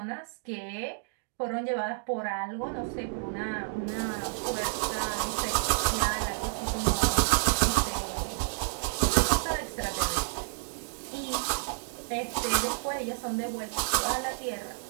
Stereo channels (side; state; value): left; silent; digital silence